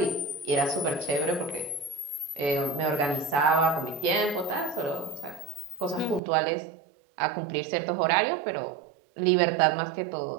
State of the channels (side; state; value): left; drops out; at 6.2 s